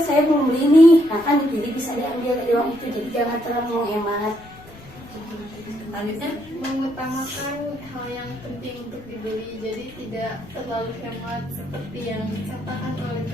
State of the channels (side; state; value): left; noise; rumble, 22 dB below the sound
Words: saya belum beli nih, nah kan jadi bisa diambil dari uang itu. Jadi jangan terlalu menghemat. Selanjutnya Mengutamakan hal yang penting untuk dibeli, jadi tidak terlalu hemat seperti yang dikatakan oleh